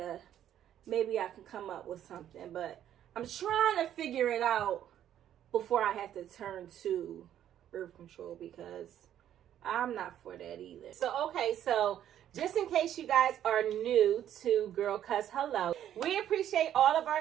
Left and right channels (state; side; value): quieter; left; 10.9 dB